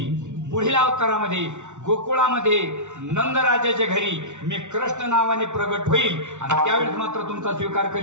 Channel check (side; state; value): left; late; 0.84 ms